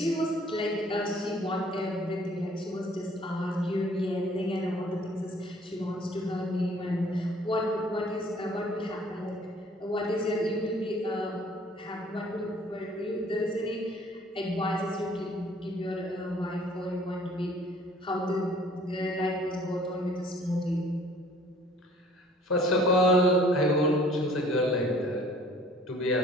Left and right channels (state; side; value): normal; both; correlation 0.55